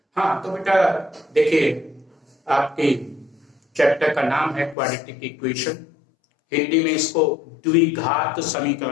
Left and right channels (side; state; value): right; drops out; at 4.8 s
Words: हाँ तो बेटा देखिए, आपके चैप्टर का नाम है क्वाड्रेटिक इक्वेशन। हिंदी में इसको द्विघात